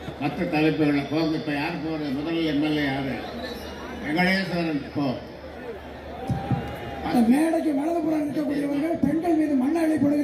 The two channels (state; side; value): identical; both; correlation 1.00